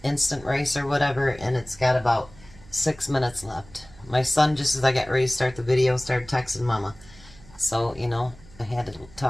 instant rice or whatever, and it's got about 6 minutes left. My son, just as I got ready to start the video, started texting Mama. So, you know, I had to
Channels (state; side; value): noise; right; hum, 22 dB below the sound